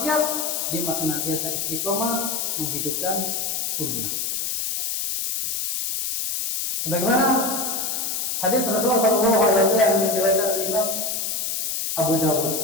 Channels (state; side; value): noise; left; hiss, 1 dB below the sound